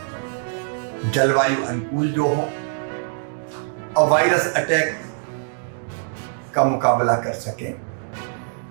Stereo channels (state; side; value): silent; left; digital silence